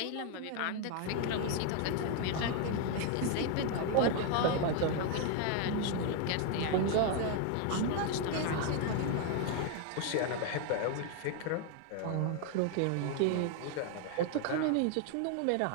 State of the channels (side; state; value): both; different; correlation 0.01